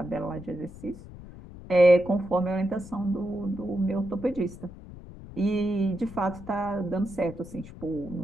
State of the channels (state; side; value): noise; left; rumble, 15 dB below the sound